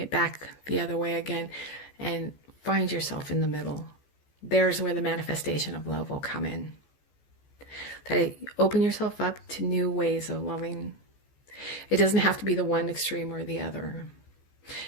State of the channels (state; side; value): late; right; 14 ms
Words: back the other way again and find yourself in the middle. There's where the manifestation of love will come in. That open yourself up to new ways of loving. It doesn't have to be the one extreme or the other.